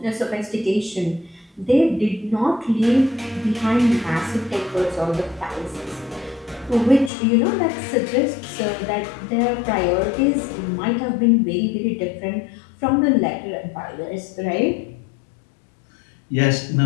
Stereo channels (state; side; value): drops out; right; at 7.1 s